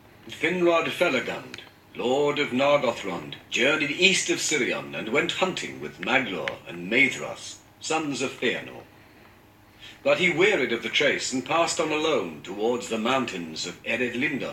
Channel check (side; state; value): both; identical; correlation 1.00